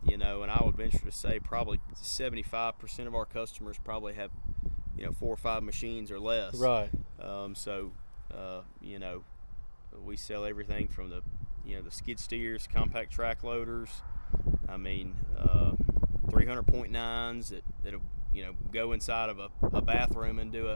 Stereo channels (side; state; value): both; inverted; correlation -1.00